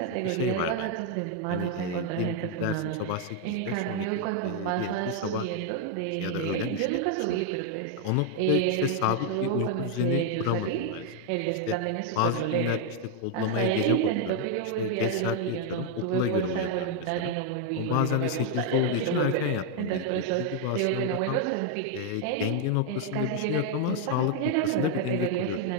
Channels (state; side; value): different; both; correlation 0.00